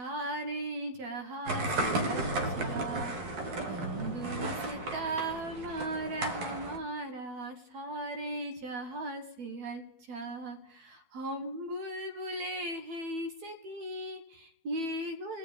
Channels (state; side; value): late; left; 4.6 ms